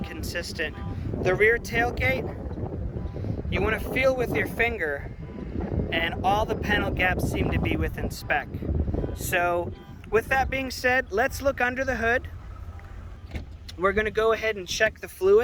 consistent. The rear tailgate, you want to feel with your finger, and all the panel gaps seem to be within spec. So with that being said, let's look under the hood. We're going to go ahead and check the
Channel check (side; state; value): both; identical; correlation 1.00